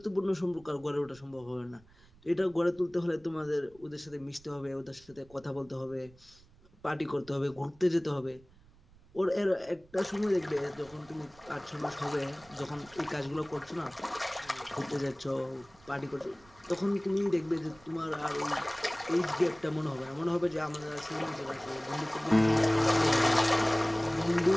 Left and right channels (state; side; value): noise; right; rumble, 26 dB below the sound